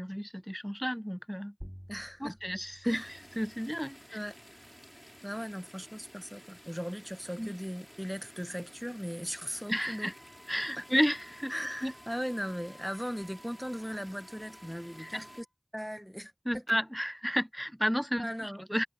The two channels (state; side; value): identical; both; correlation 1.00